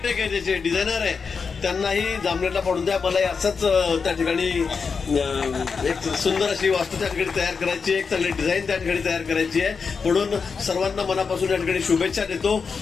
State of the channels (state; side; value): quieter; right; 5.4 dB